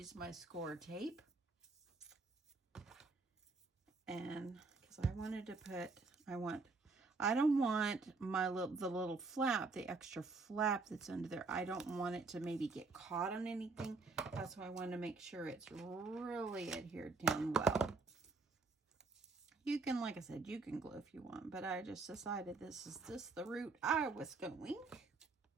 my score tape. And because I wanted to put, I don't want the little flap, the extra flap that's under there. I don't want it to maybe get caught on anything. That's why I want to make sure it's really adhered down well. You can, like I said, you can glue if you want, but I just decided this is just the route I was going.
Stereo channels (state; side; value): quieter; left; 3.9 dB